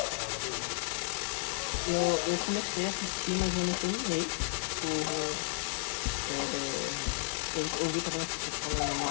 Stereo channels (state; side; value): silent; right; digital silence